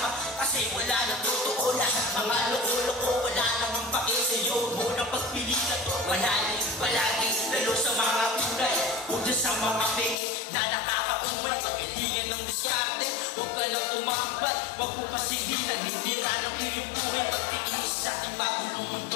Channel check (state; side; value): drops out; right; at 10.2 s